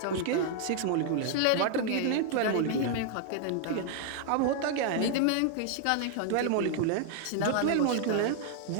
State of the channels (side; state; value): both; different; correlation 0.00